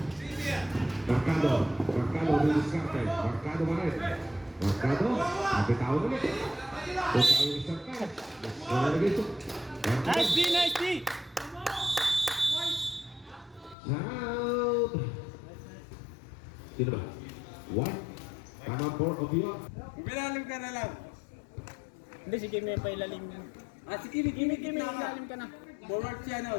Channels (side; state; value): right; drops out; at 13.8 s